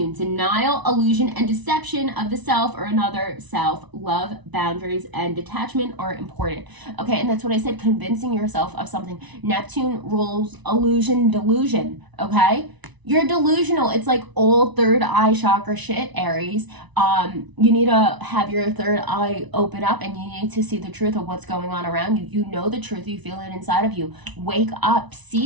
denial, illusion, and deception of the self or another self. Love, boundaries, and detachment are important. Okay, and that's what I said, convincing yourself of something. Neptune rules illusion, delusion, okay? You're delusional. It's like old third eye chakra shit, Aries. You need to have your third eye open up, and you need to see the truth of what's going on around you. You know the truth. You feel it inside of you. Wake up.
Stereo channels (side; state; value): left; late; 1.0 ms